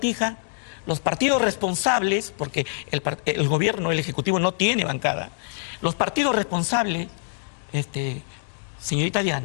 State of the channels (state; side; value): silent; right; digital silence